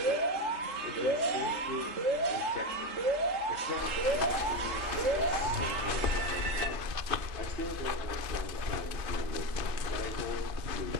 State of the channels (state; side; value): late; left; 3.2 ms